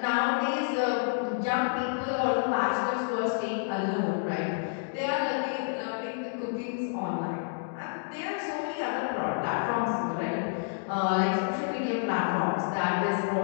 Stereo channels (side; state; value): right; silent; digital silence